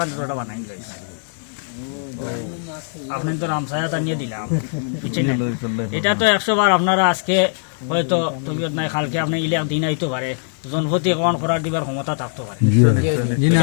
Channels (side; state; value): right; silent; 65 dB below the other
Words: বানাই দিলাইছি। আপনার তো রামসায়া নিয়ে দিলাম, বুঝছেন না? এটা তো 100 বার আপনারা আজকে হয়তো তবিয়ত নাই, কালকে আপনি ইলে দিন আইতে পারে, জনপতি কমান করার দিবার ক্ষমতা থাকতে পারে,